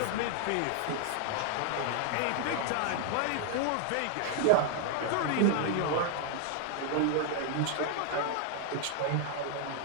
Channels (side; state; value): both; different; correlation 0.00